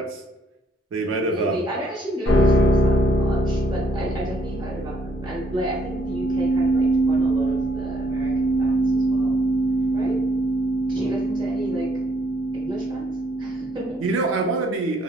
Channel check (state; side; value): normal; both; correlation 0.69